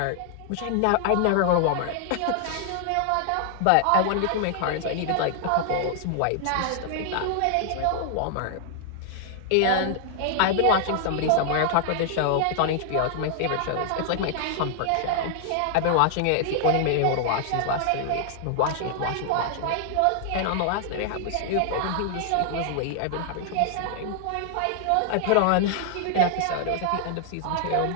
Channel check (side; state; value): both; different; correlation -0.01